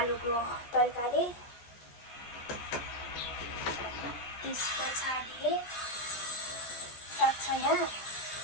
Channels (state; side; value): late; right; 14 ms